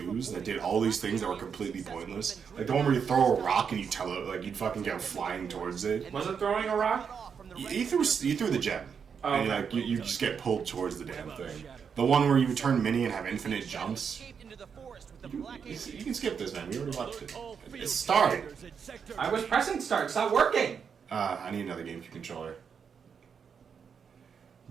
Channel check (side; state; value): left; quieter; 6.7 dB